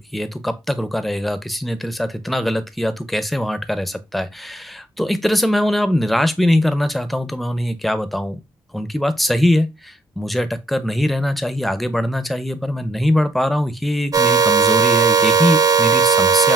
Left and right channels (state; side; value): normal; both; correlation 0.71